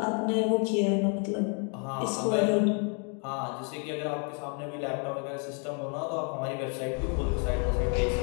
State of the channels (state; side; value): quieter; right; 39.7 dB